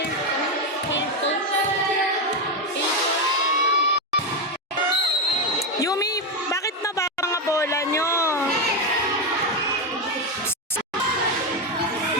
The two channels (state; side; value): normal; both; correlation 0.09